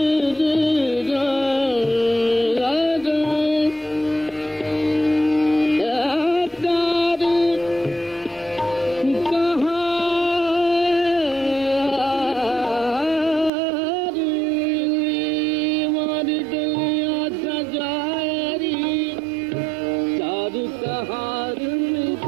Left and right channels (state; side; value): drops out; left; at 13.5 s